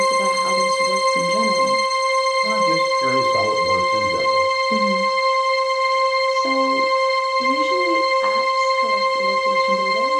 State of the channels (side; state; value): both; identical; correlation 1.00